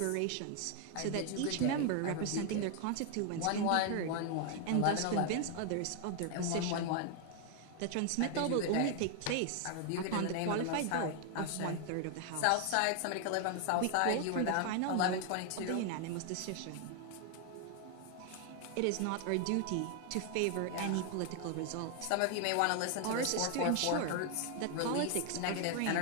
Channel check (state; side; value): different; both; correlation 0.00